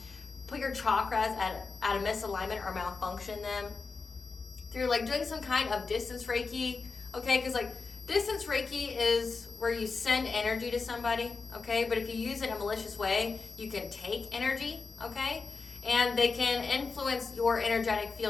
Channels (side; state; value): right; quieter; 4.4 dB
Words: put your chakras at a misalignment or malfunction them through like doing some kind of distance Reiki. Okay, because like distance Reiki is where you send energy to somebody. Okay, but if you use it in a malicious way, you can take energy. Okay, and they can influence your energetic